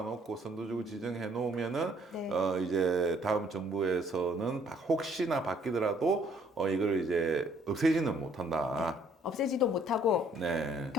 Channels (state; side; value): normal; both; correlation 0.63